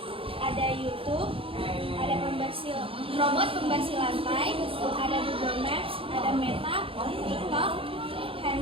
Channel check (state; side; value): late; left; 0.27 ms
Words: ada YouTube, ada robot pembersih lantai, ada Google Maps, ada Meta, TikTok,